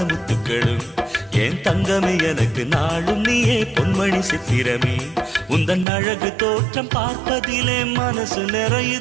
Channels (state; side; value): drops out; left; at 5.9 s